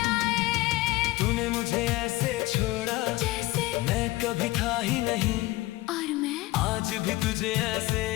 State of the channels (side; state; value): right; quieter; 19.3 dB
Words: तूने मुझे ऐसे छोड़ा जैसे मैं कभी था ही नहीं, और मैं आज भी तुझे ऐसे